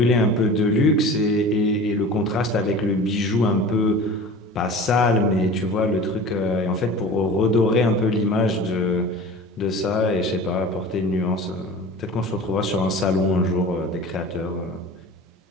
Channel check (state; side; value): normal; both; correlation 0.38